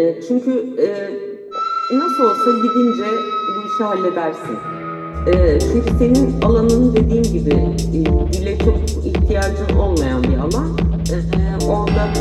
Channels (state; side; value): identical; both; correlation 1.00